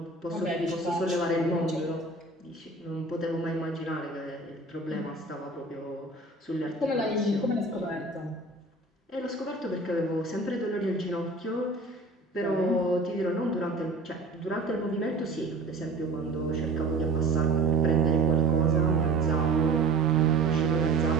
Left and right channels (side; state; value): left; quieter; 3.3 dB